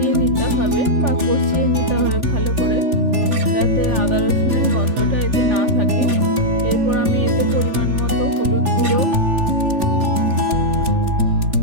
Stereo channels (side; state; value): left; late; 3.4 ms